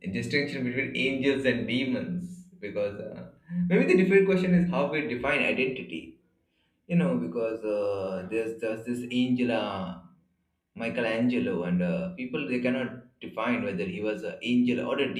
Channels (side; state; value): both; identical; correlation 1.00